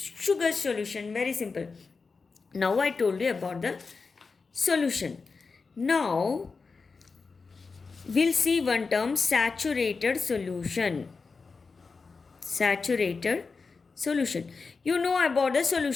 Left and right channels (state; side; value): quieter; right; 4.6 dB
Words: solution. Very simple. Now I told you about the solution. Now we'll see one term, saturated solution. Saturated solution. You know about the